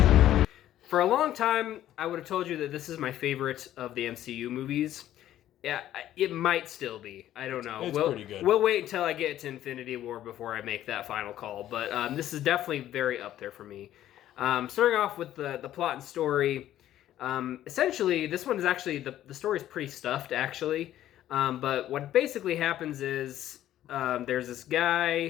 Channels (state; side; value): quieter; right; 12.6 dB